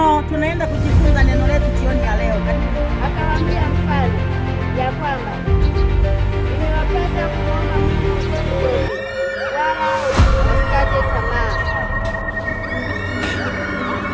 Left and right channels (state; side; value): identical; both; correlation 1.00